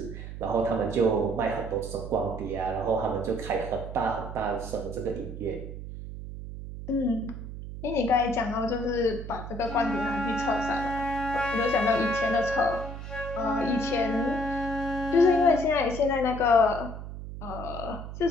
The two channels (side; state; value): right; noise; hum, 9 dB below the sound